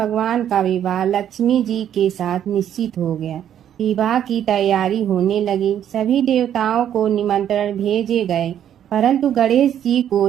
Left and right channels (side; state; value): left; quieter; 10.1 dB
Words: का विवाह लक्ष्मी जी के साथ निश्चित हो गया। विवाह की तैयारी होने लगी। सभी देवताओं को निमंत्रण भेजे गए, परंतु गणेश जी को